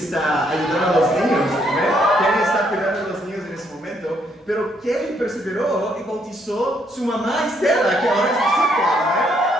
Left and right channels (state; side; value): normal; both; correlation 0.72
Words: ayudando a los niños. Kelly está cuidando a los niños en ese momento, pero Kelly perseveró y bautizó su mamá Estela, que ahora es discípula.